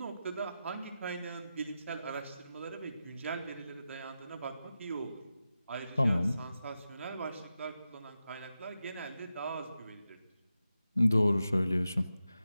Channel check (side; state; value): both; inverted; correlation -0.91